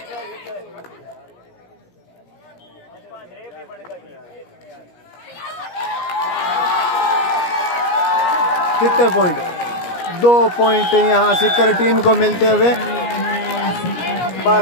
कितने पॉइंट 2 पॉइंट यहाँ सिक्कर टीम को मिलते हुए।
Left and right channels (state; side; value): late; right; 17 ms